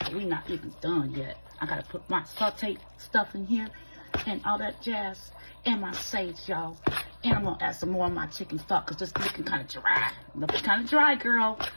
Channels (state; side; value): inverted; both; correlation -1.00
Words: We're not even done yet. I gotta put my sauteed stuff in here and all that jazz and my sage, y'all. And I'm gonna add some more of my chicken stock because this looking kind of dry. Looking kind of dry, girl.